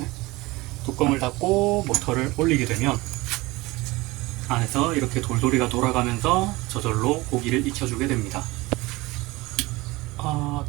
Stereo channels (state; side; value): quieter; left; 21.5 dB